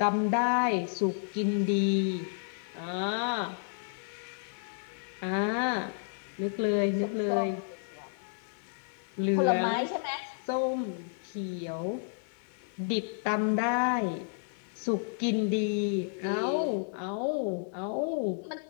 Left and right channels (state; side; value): silent; right; 57 dB below the other